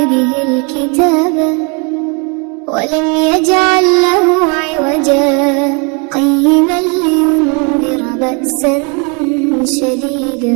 الكتاب ولم يجعل له عوجا قيما لينذر بأسا شديدا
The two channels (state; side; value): quieter; left; 33.6 dB